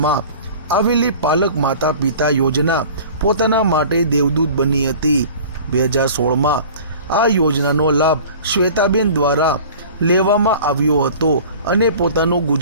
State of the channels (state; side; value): inverted; both; correlation -0.43